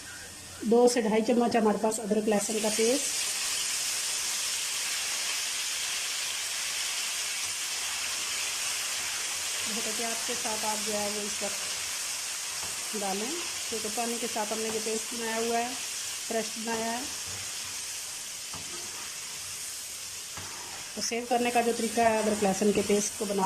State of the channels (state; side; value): identical; both; correlation 1.00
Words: 2 से 2.5 चम्मच हमारे पास अदरक लहसुन का पेस्ट। बहुत एहतियात के साथ आप जो है वो इस वक्त डालें, क्योंकि पानी के साथ हमने ये पेस्ट बनाया हुआ है, फ्रेश बनाया है। तो सेव करने का जो तरीका है, अदरक लहसुन के पेस्ट को